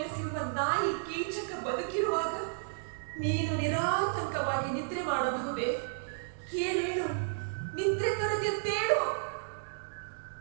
ನಾಯಿ ಕೀಚಕ ಬದುಕಿರುವಾಗ ನೀನು ನಿರಾತಂಕವಾಗಿ ನಿದ್ರೆ ಮಾಡಬಹುದೇ? ಏನೇನು ನಿದ್ರೆ ಕರೆದೆತ್ತೇಳು.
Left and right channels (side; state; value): left; silent; digital silence